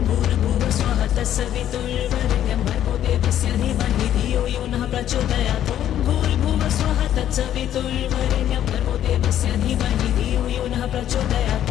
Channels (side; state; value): right; quieter; 11.2 dB